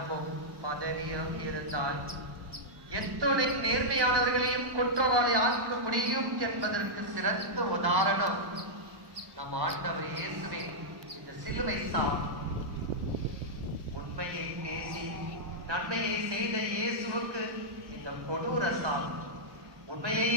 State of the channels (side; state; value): left; late; 1.1 ms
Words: பதவியும் இருந்தால் எத்தனை நேர்மையானவர்களையும் குற்றவாளி ஆக்க முடியும் என்பதற்கு சிறந்த உதாரணம் நம் ஆண்டவர் இயேசுவே இந்த சிலுவை சாவு. உண்மையை பேசி நன்மையை செய்த இயேசுவுக்கு இந்த கொடூர சாவு.